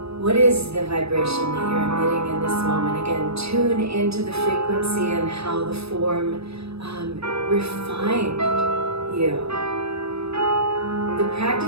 What is the vibration that you're emitting in this moment? Again, tune into the frequency and how the form refined you. The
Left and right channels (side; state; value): left; late; 0.78 ms